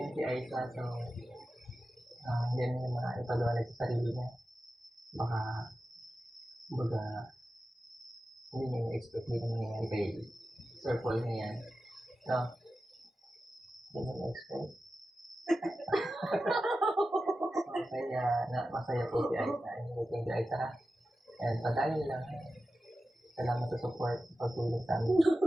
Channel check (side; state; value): both; normal; correlation 0.93